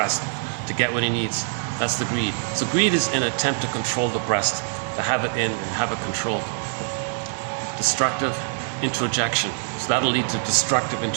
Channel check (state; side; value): silent; left; digital silence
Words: to get what he needs. That's the greed. So greed is an attempt to control the breast, to have it in and have it controlled. Destructive introjection. So that'll lead to destructive